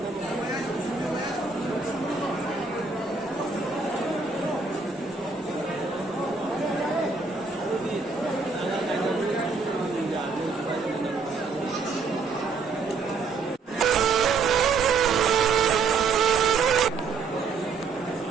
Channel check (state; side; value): quieter; left; 4.6 dB